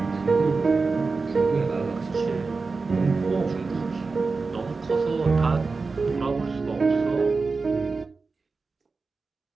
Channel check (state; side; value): quieter; left; 4.2 dB